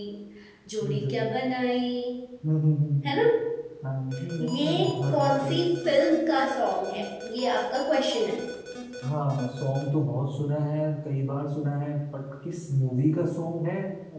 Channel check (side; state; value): both; identical; correlation 1.00